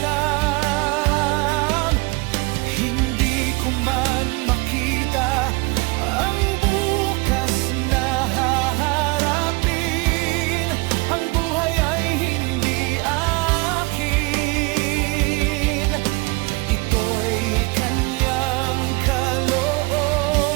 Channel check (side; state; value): left; quieter; 26.3 dB